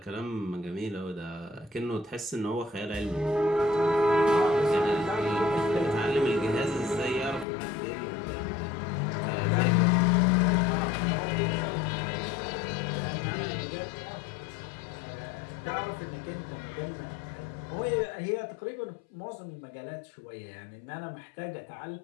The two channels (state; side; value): drops out; right; at 7.5 s